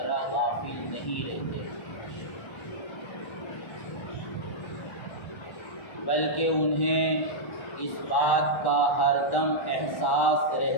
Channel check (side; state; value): right; late; 1.1 ms